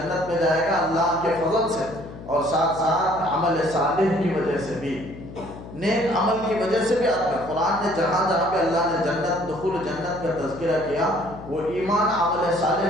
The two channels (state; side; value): noise; left; hum, 14 dB below the sound